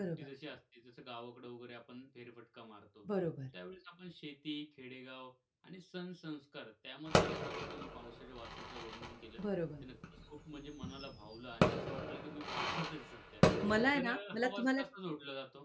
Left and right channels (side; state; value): both; identical; correlation 1.00